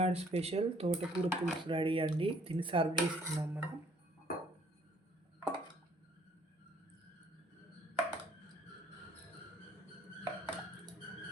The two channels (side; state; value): both; normal; correlation 0.61